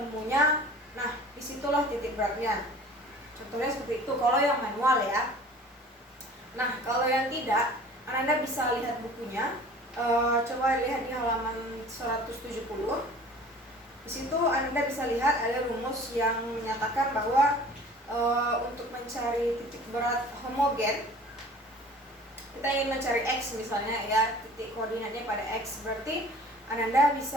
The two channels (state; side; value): normal; both; correlation 0.45